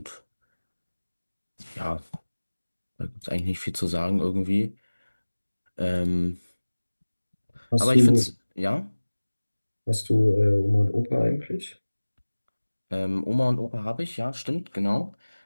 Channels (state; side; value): inverted; both; correlation -1.00